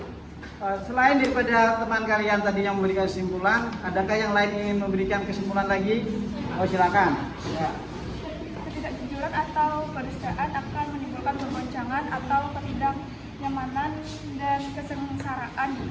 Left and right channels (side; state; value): both; identical; correlation 1.00